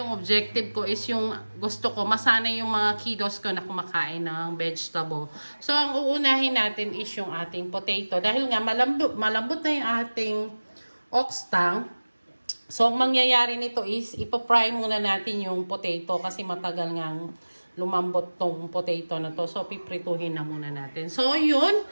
objective ko is yung gusto ko masanay yung mga kiddos ko na kumakain ng vegetable. So ang uunahin natin is yung ating potato. Dahil nga malambot na yung ating ox tongue. So, ang mangyayari nito is, ipapry muna natin yung potato kasi matagal ngang lumambot tong potato na to. So, piprituhin na muna natin. So, yun.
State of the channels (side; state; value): both; inverted; correlation -1.00